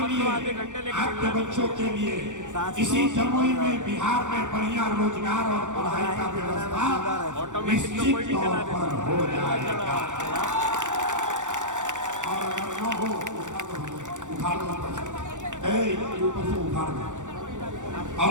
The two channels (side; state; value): left; late; 0.86 ms